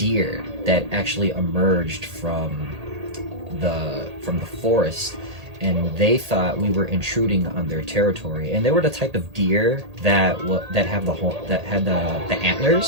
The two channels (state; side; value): late; left; 1.8 ms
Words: that actually emerged from the forest, and they thought we were intruding on their territory. And they were the type of deer that had the